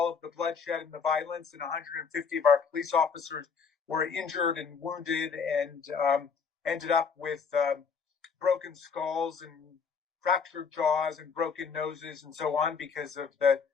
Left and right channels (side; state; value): right; quieter; 5.9 dB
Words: of the bloodshed and the violence, and 150 of our police officers were injured and wounded and ended up with broken skulls and fractured jaws and broken noses and so on because of the